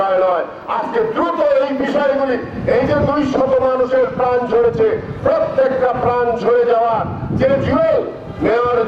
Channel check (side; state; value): both; identical; correlation 1.00